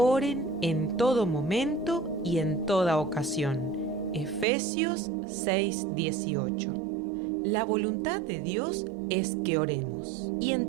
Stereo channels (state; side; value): drops out; left; at 4.5 s